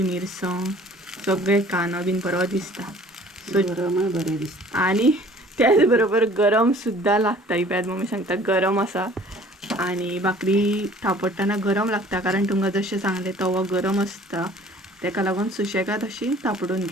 मिरसांग, सगळे कांदो बीन बरो दिसता. गरमय बरें दिसता. आणि त्याच बरोबर गरम सुद्धा लागता. ही पळयात मम्मी सांगता गरम आसा. आणि भाकरी थापटतना गरम लागता, कारण तुमकां जशें सांगलें तवो गरम आसता, तेका लागून सुशेगाद अशी थापडून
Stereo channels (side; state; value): both; normal; correlation 0.51